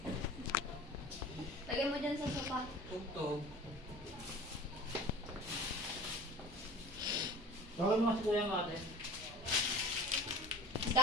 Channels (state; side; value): normal; both; correlation 0.40